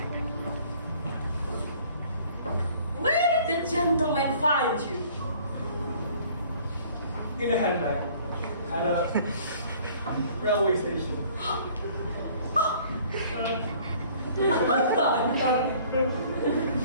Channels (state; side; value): inverted; both; correlation -0.55